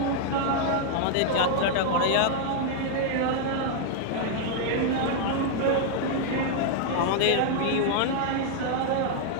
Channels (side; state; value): both; different; correlation -0.01